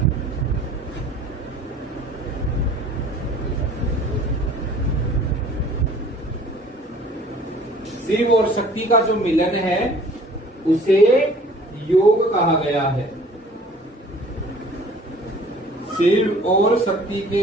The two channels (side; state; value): both; normal; correlation 0.51